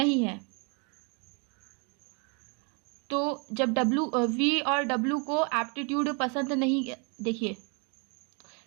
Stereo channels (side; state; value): left; quieter; 34.4 dB